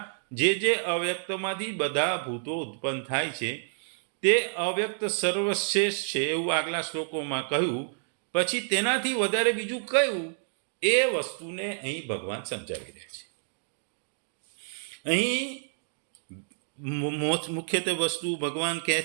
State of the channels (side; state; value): left; silent; digital silence